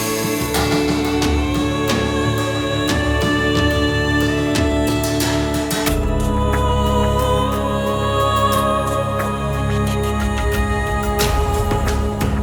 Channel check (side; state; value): both; identical; correlation 1.00